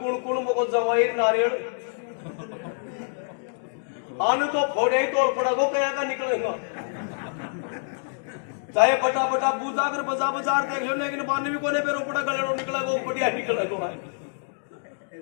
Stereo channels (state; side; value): silent; right; digital silence